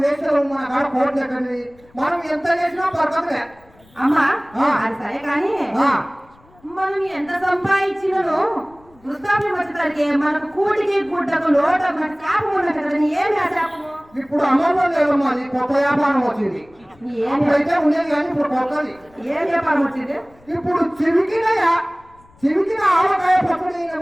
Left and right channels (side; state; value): left; noise; rumble, 29 dB below the sound